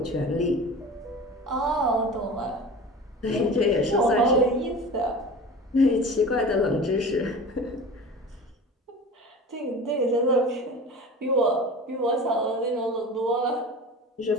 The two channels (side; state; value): both; normal; correlation 0.36